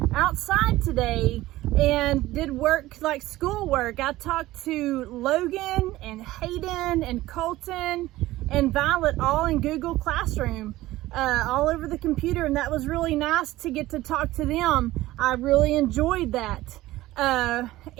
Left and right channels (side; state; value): left; quieter; 16.9 dB